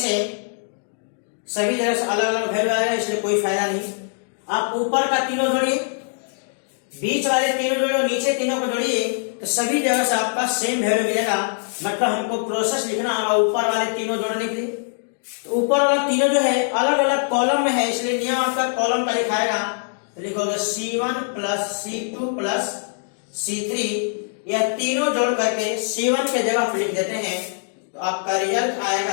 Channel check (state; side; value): silent; right; digital silence